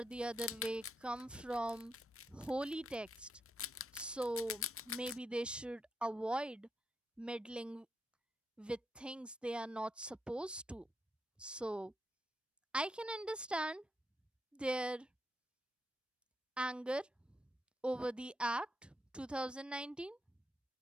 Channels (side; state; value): both; normal; correlation 0.82